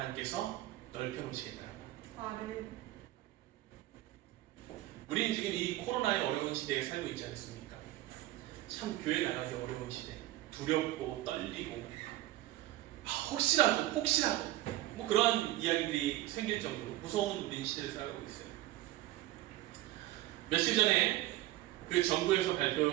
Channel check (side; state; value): left; quieter; 15.8 dB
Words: 넓혀 놓으시겠다는 것. 아멘. 우리는 지금 이 코로나의 어려운 시대에 살고 있지 않습니까? 참 교회 나가기 어려운 시대, 두렵고 떨리고 혹시라도 뭐 그러한 이야기들이 생길 정도로 무서운 우리 시대를 살아가고 있어요. 며칠 전에 그 정부에서